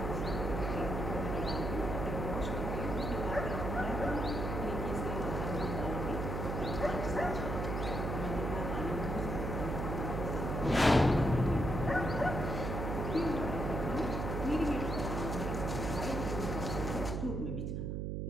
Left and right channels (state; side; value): noise; right; hum, 2 dB below the sound